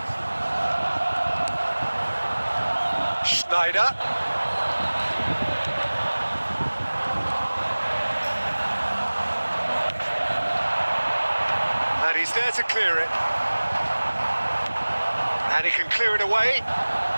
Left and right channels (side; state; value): both; inverted; correlation -1.00